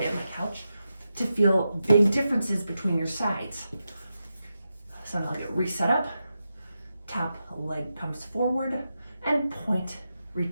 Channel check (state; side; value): inverted; both; correlation -0.89